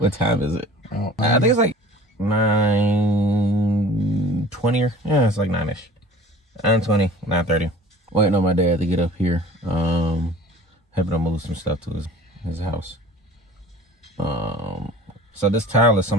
time is it? Oh, I think it's like 9:20 or yeah, it's like 9ish. 9:20, 9:30. Waiting on my dad to get up here. Having to move some stuff to his house. So this tile is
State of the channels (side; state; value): both; normal; correlation 0.45